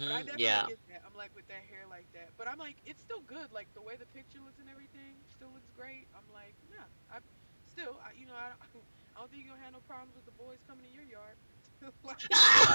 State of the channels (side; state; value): both; inverted; correlation -1.00